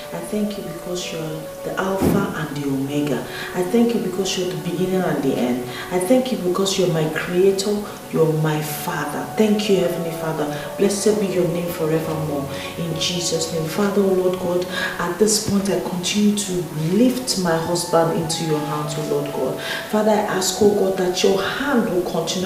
I thank you because you're the Alpha and the Omega. I thank you because you're the beginning and the end. I thank you because you're my Creator, you're my Father. Thank you, Heavenly Father. Blessed be your name forevermore. In Jesus' name. Father, Lord God, at this point I continue to lift my husband into your hands, O Lord God. Father, I ask, O God, that your hand will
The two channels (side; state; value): both; identical; correlation 1.00